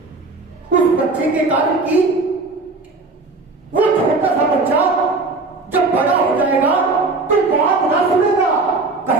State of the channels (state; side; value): quieter; left; 3.6 dB